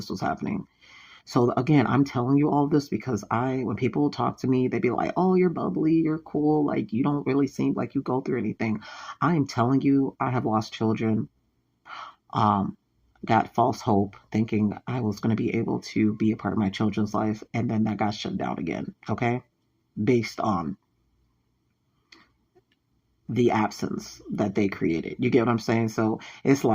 was happening. So again, I'm telling you all this because when people talk to me, they be like, "Oh, you're bubbly, you're cool, like you don't really seem like you go through anything." I am telling you, I have lost children. Um, got false hope, thinking I was going to be able to be a part of my children's life, and then that got shut down again. Okay, based on the absence that they created. You get what I'm saying? So it's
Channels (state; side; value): identical; both; correlation 1.00